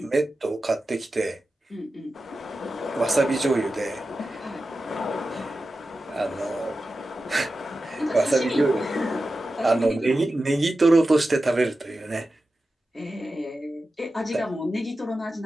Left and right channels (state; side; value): normal; both; correlation 0.93